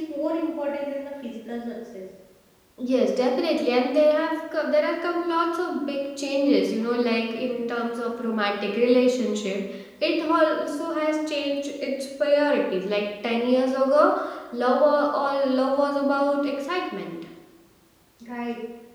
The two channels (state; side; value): identical; both; correlation 1.00